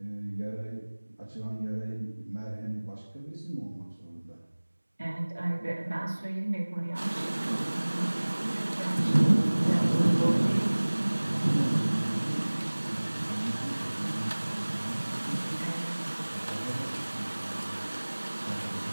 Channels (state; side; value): inverted; both; correlation -1.00